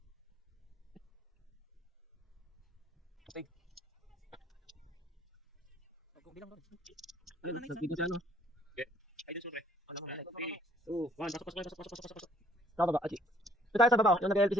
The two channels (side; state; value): both; normal; correlation 0.59